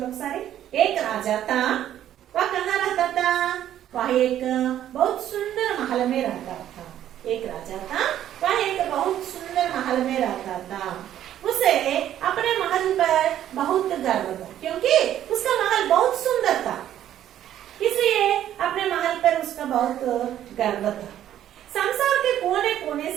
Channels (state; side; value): quieter; left; 11.4 dB